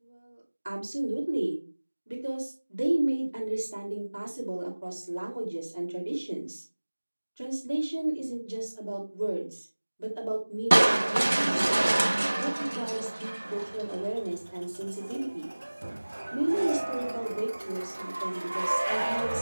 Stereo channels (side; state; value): both; inverted; correlation -1.00